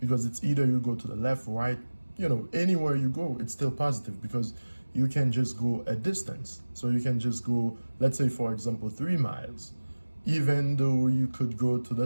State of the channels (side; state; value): both; inverted; correlation -1.00